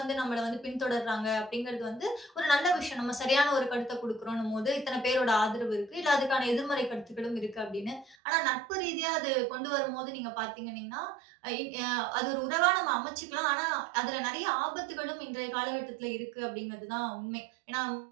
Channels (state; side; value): drops out; left; at 8.2 s